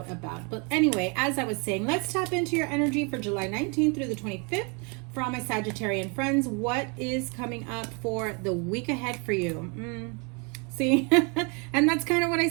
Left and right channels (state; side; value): quieter; left; 33.5 dB